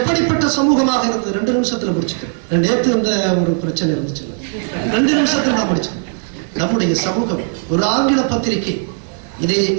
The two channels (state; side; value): silent; left; 57 dB below the other